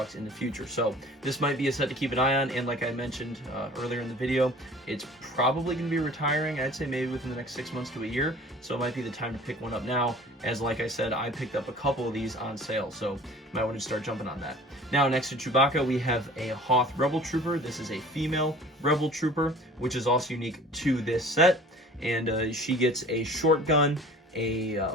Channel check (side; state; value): both; normal; correlation 0.46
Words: in the future. So this might be a set to keep an eye on, and like I mentioned earlier in the video, it's probably going to be retiring, I'd say maybe within the next 6 months to a year, so it might be the time to pick one up now, as like I said, I picked up a couple of these on sale, so you might want to start jumping on that. Now, next to Chewbacca, we have a Hoth Rebel Trooper. This is a female Rebel Trooper, which is also unique to this set, and she gets a short gun, a